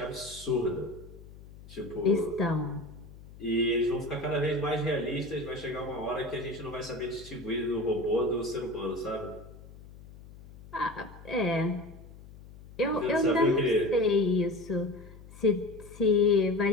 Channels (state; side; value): noise; left; hum, 18 dB below the sound